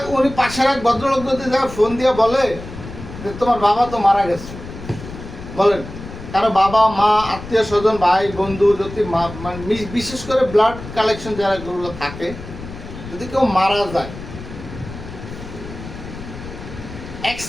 উনি পাশের এক ভদ্রলোক যদি ফোন দিয়ে বলে যে তোমার বাবা তো মারা গেছে, বলেন, কারো বাবা মা আত্মীয় স্বজন ভাই বন্ধু যদি মানে বিশেষ করে ব্লাড কালেকশন যারা গুলো থাকে, যদি কেউ মারা যায়, 1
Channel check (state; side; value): noise; left; rumble, 12 dB below the sound